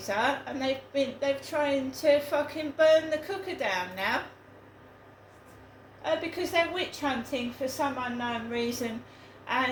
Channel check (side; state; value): both; identical; correlation 1.00